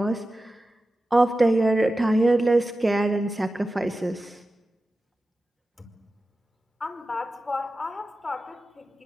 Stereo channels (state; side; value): normal; both; correlation 0.94